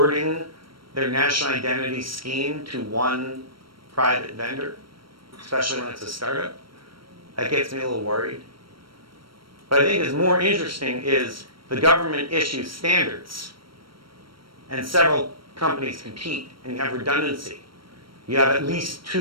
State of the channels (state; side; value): late; left; 0.74 ms